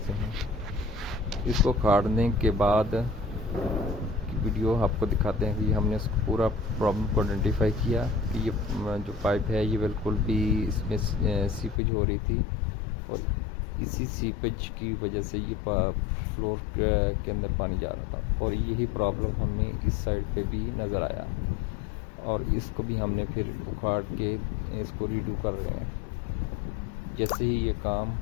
हैं। इसको उखाड़ने के बाद की वीडियो आपको दिखाते हैं कि हमने इसको पूरा प्रॉब्लम को आइडेंटिफाई किया कि ये जो पाइप है ये बिल्कुल भी इसमें सीपेज हो रही थी और इसी सीपेज की वजह से ये फ्लोर के अंदर पानी जा रहा था और यही प्रॉब्लम हमें इस साइड पे भी नज़र आया और इसको भी हमने फिर उखाड़ के इसको रीडू कर रहे हैं। जैसे ही ये काम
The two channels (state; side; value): drops out; right; at 11.8 s